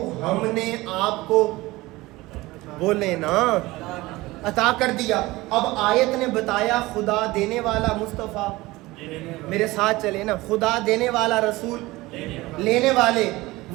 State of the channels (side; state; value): left; quieter; 20.0 dB